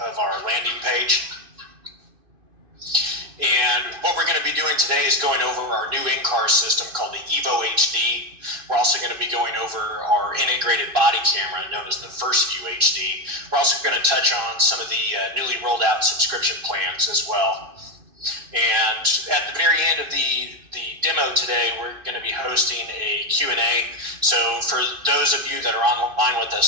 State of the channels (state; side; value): late; left; 2.5 ms